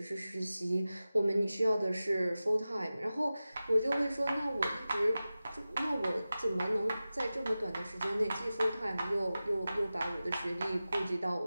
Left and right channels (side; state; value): both; inverted; correlation -0.95